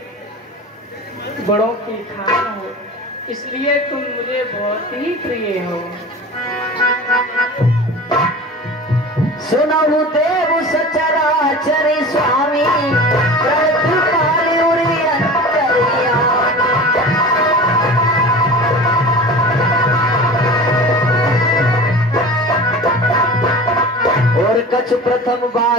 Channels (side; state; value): both; normal; correlation 0.36